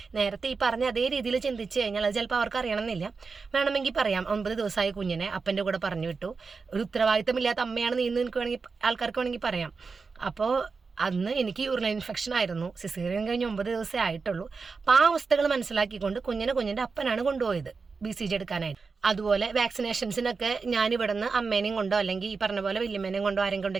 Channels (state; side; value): quieter; left; 4.7 dB